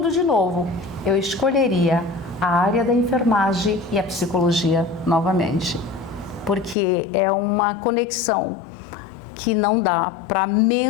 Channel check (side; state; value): right; drops out; at 6.8 s